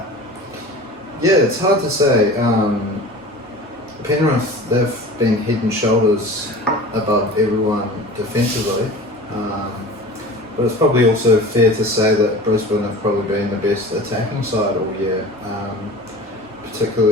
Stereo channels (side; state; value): both; normal; correlation 0.38